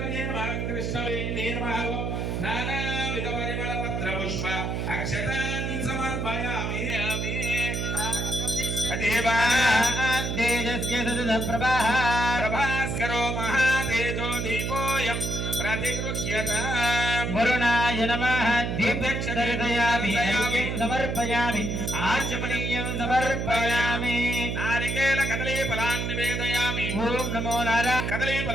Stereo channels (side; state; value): right; noise; hum, 1 dB below the sound